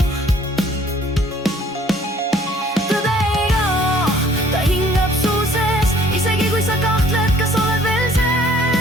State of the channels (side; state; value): both; normal; correlation 0.58